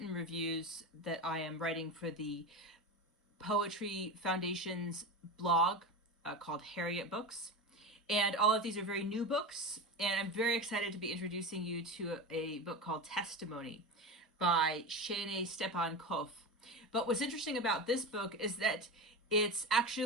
reviews that I am writing for the Poetry Foundation's blog called Harriet Books. And all of these are very new books, and I'm very excited to be introducing you to a book called Testimony by Shaynae Stephan Koff. But what's interesting about this book is that it's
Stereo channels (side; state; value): both; normal; correlation 0.24